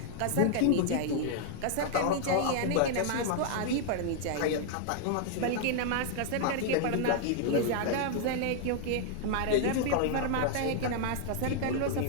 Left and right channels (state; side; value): different; both; correlation 0.00